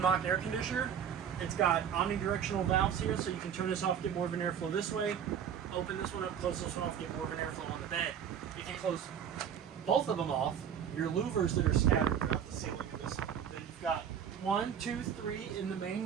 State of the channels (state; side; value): quieter; left; 8.5 dB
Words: Mach air conditioner. It's got omnidirectional valves here, so you can turn this off, get more of an airflow this way. Open this one up, close this one off, get more of an airflow on the bed. If you close both of them off, your louvers that are scattered throughout the ceiling of this, then you've got 1, 2, 3 in the main